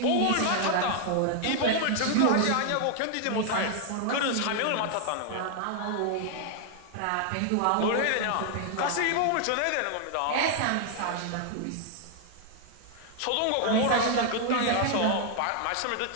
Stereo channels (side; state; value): both; different; correlation 0.00